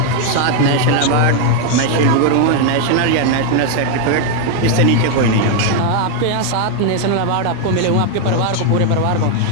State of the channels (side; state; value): both; different; correlation 0.01